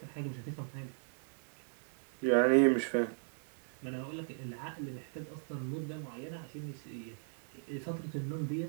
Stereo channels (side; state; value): left; silent; digital silence